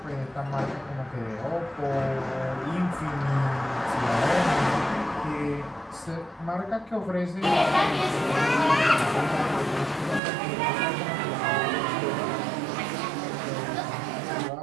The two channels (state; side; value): drops out; left; at 10.2 s